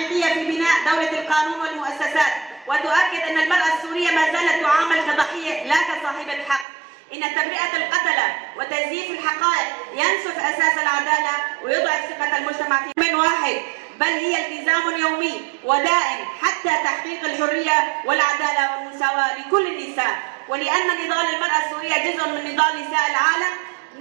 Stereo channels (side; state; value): left; drops out; at 6.7 s